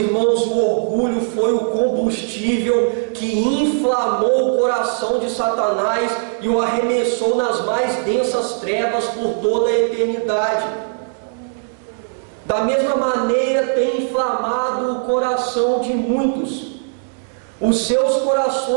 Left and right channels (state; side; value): silent; left; digital silence